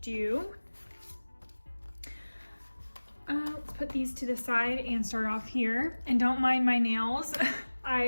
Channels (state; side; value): inverted; both; correlation -1.00